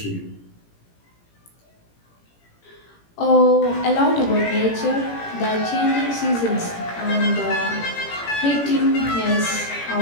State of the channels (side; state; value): right; late; 18 ms